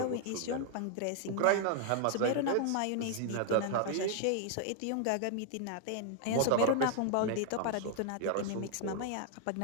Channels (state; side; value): different; both; correlation 0.00